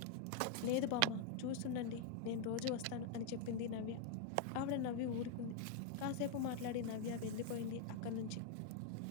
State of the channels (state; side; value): different; both; correlation 0.00